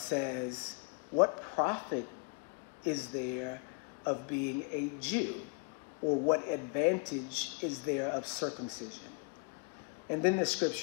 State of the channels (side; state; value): right; quieter; 35.0 dB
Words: "What profit is there of being a Jew? Or what advantage is there of circumcision?" And then the